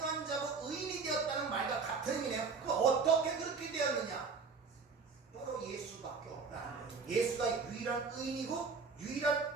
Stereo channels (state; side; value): quieter; left; 4.9 dB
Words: 자고 의인이 되었다는 말과 같은 의미네요. 그럼 어떻게 그렇게 되었느냐? 바로 예수밖에 없다. 예수가 유일한 의인이고